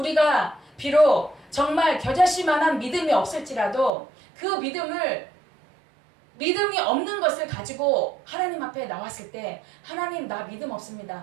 비록 정말 겨자씨만한 믿음이 없을지라도 그 믿음이 없는 것을 가지고 하나님 앞에 나왔을 때 하나님, 나 믿음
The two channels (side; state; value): left; drops out; at 3.9 s